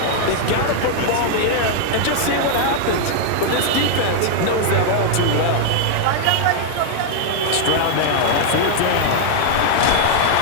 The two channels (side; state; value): both; different; correlation 0.00